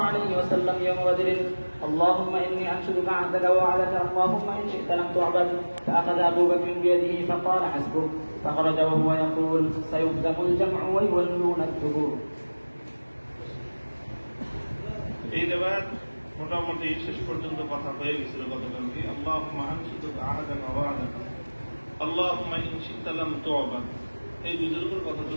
عليه وسلم يوم بدر: اللهم إني أنشدك عهدك ووعدك، اللهم إن شئت لم تعبد. فأخذ أبو بكر بيده فقال: حسبك. فخرج وهو يقول: سيهزم الجمع ويولون الدبور. এই রিওয়ায়াত মোটামুটি শেষ পর্যন্ত কথা হয়ে গেছিল গতকালকে। আল্লাহুম্মা আনশুদুকা আহাদাকা ওয়া ওয়া'দাকা, আল্লাহুম্মা ইন শি'তা লাম তু'বাদ। এই দুটোর উপর কথা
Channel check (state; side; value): inverted; both; correlation -1.00